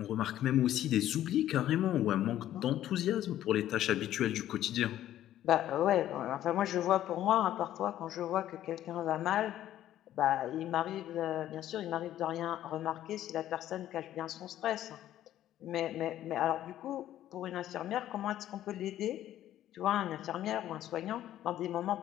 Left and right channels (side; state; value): right; quieter; 12.5 dB